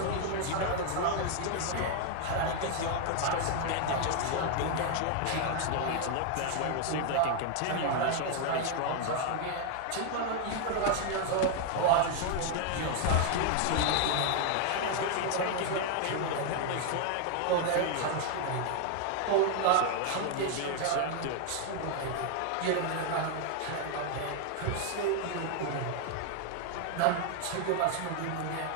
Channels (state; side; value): different; both; correlation 0.00